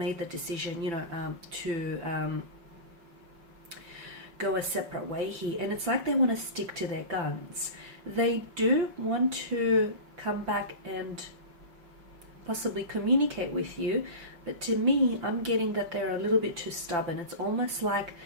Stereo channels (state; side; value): late; left; 5.9 ms